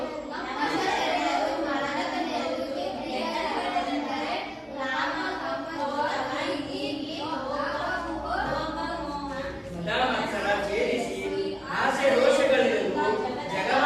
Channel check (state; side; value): identical; both; correlation 1.00